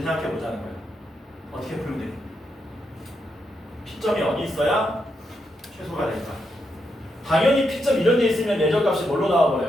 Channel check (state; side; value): normal; both; correlation 0.82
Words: 생각해 보자는 거야. 어떻게 풀면 돼? P점이 어디 있어야 최소가 될까? 당연히 P점 이런 데 있으면 내적값이 뭘로